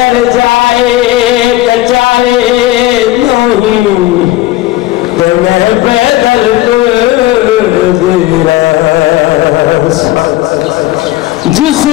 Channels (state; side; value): quieter; right; 16.2 dB